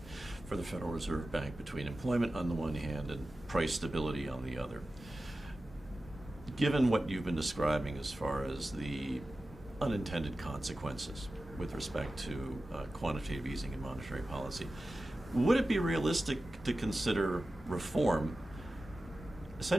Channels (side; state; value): both; normal; correlation 0.94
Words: for the Federal Reserve Bank between employment on the one hand and price stability on the other. Given what you've been describing as far as the unintended consequences with respect to quantitative easing and monetary policy, would it be realistic to consider reform,